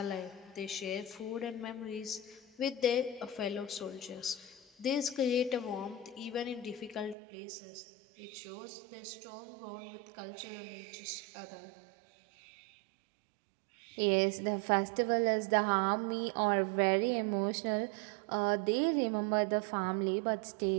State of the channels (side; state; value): left; drops out; at 7.2 s